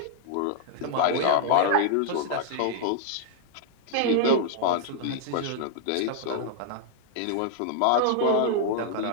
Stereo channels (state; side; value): different; both; correlation -0.01